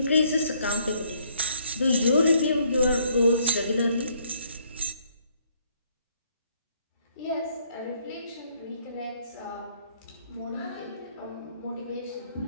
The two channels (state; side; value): inverted; both; correlation -0.67